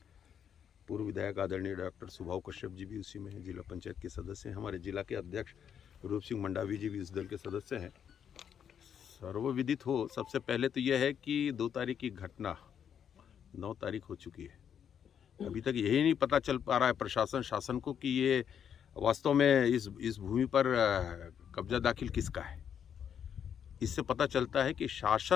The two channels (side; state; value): right; quieter; 8.4 dB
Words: पूर्व विधायक आदरणीय डॉक्टर सुभाव कश्यप जी भी उसी में हैं, जिला पंचायत के सदस्य हैं, हमारे जिला के अध्यक्ष रूप सिंह मंडावी जी भी इस दल के सदस्य हैं। सर्वविदित हो, सबसे पहले तो यह है कि 2 तारीख की घटना 9 तारीख हो चुकी है। अभी तक यही नहीं पता चल पा रहा है प्रशासन शासन को कि ये वास्तव में इस भूमि पर कब्जा दाखिल किसका है। इससे पता चलता है कि